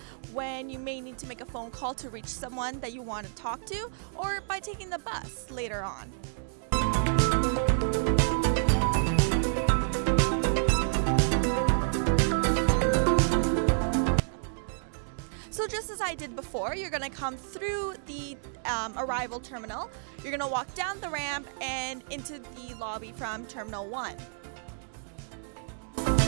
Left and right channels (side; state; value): left; silent; digital silence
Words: when you may need to make a phone call to reach someone that you want to talk to, or by taking the bus later on. So just as I did before, you're going to come through the arrival terminal, you're going to walk down the ramp and into the lobby from Terminal 1.